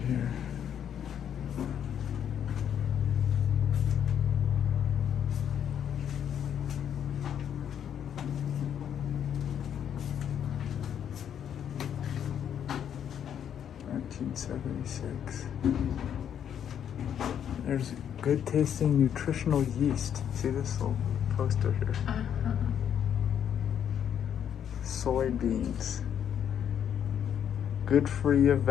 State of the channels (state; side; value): quieter; right; 9.0 dB